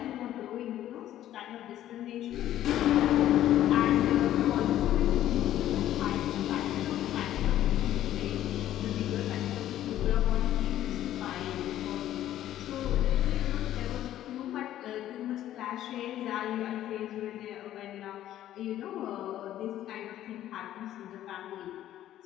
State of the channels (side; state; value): right; quieter; 12.6 dB